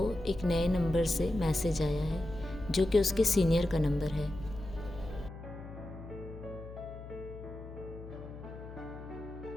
एक नए नंबर से मैसेज आया है, जो कि उसके सीनियर का नंबर है।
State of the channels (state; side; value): noise; left; hum, 13 dB below the sound